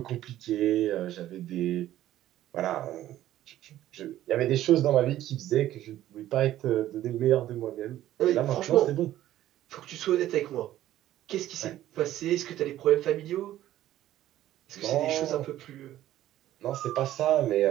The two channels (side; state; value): left; quieter; 13.4 dB